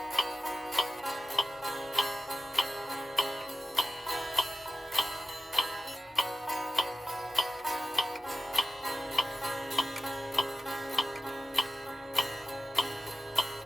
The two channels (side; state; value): both; normal; correlation 0.91